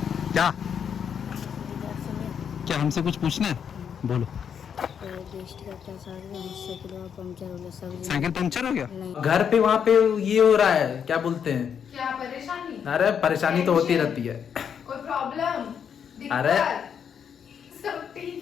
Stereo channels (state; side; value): quieter; right; 7.7 dB